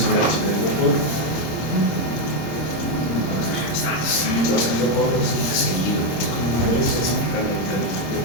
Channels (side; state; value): right; late; 26 ms